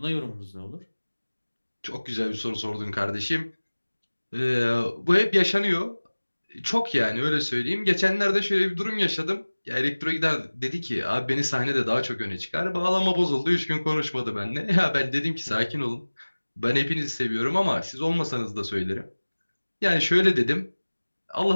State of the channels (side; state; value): both; inverted; correlation -1.00